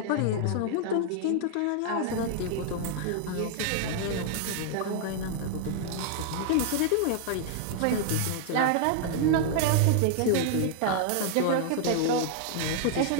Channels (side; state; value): both; different; correlation 0.00